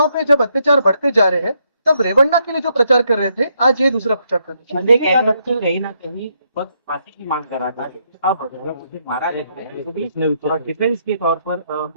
पे जब अत्याचार बढ़ते जा रहे हैं तब रेवन्ना के लिए जो प्रचार कर रहे थे, आज ये दूसरा प्रचार कर रहे हैं। कहीं ना कहीं फांसी की मांग कर रहा था। अब उसे मारा जाता है, डिफेंस के तौर पर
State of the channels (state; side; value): inverted; both; correlation -0.76